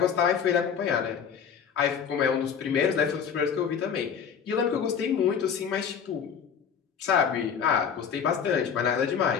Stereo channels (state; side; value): quieter; right; 7.3 dB